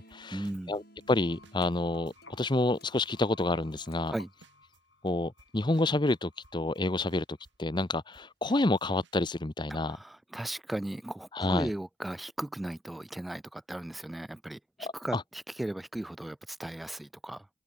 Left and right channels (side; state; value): both; normal; correlation 0.70